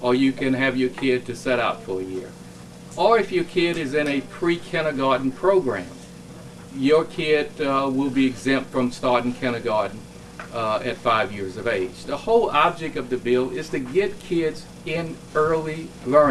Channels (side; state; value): both; identical; correlation 1.00